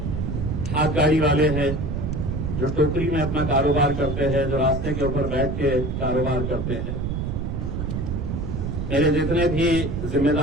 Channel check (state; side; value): noise; right; rumble, 2 dB below the sound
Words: हाथ गाड़ी वाले हैं जो टोकरी में अपना कारोबार करते हैं, जो रास्ते के ऊपर बैठ के कारोबार करते हैं। मेरे जितने भी